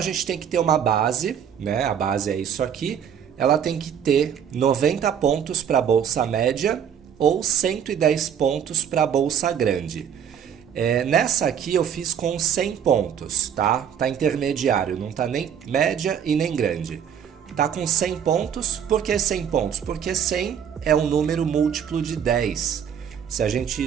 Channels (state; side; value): quieter; left; 8.4 dB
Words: gente tem que ter uma base, né? A base é isso aqui. Ela tem que ter 90 pontos para a bolsa média ou 110 pontos para a bolsa grande. Nessa aqui eu fiz com 100 pontos, tá? Tá intermediário, não tá nem média e nem grande. Tá com 100 pontos, por que 100 pontos? Porque 100 é um número múltiplo de 10. Se a gente